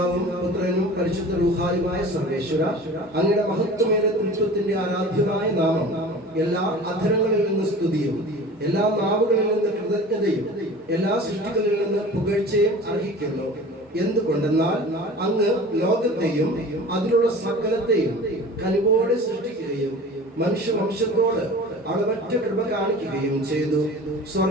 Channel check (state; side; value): normal; both; correlation 0.40